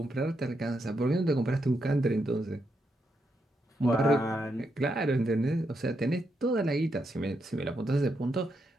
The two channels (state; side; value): normal; both; correlation 0.81